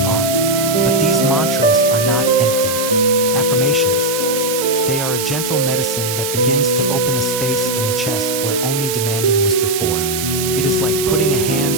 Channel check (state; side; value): noise; right; hiss, 4 dB below the sound